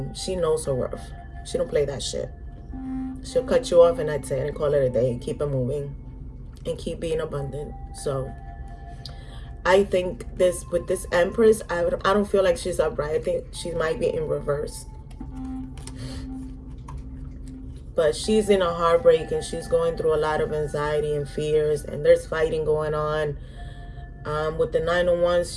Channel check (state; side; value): identical; both; correlation 1.00